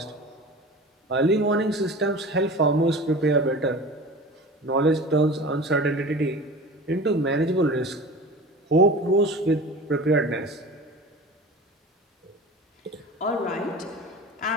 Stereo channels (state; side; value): normal; both; correlation 0.36